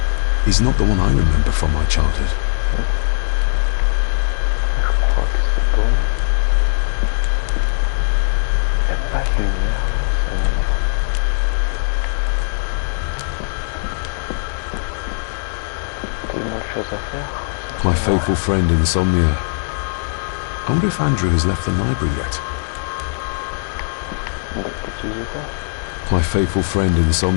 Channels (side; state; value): right; silent; digital silence